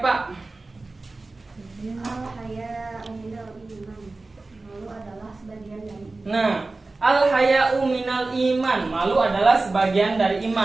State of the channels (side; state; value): left; quieter; 3.4 dB